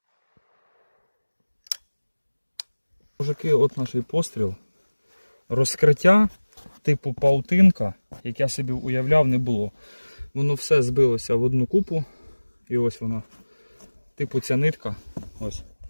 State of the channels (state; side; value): inverted; both; correlation -1.00